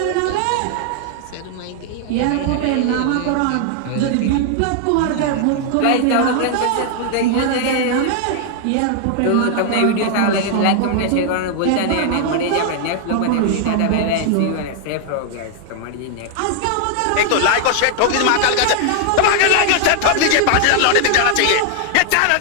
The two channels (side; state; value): both; different; correlation 0.00